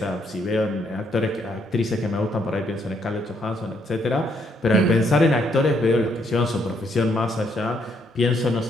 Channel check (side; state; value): both; normal; correlation 0.72